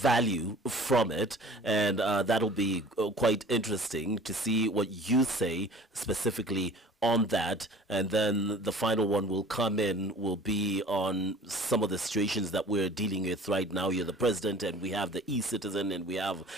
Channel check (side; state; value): both; normal; correlation 0.46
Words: from it, and that'll be quite interesting to see what you say specifically on that. And then the final one will come in, will be on some of the situations that we're dealing with right now. You're the president, and we have the e-citizen, and we have